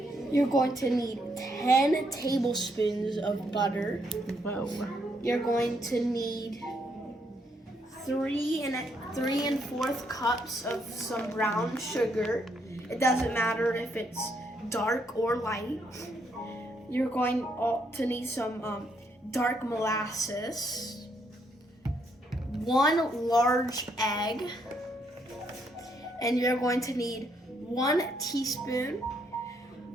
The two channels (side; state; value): both; normal; correlation 0.74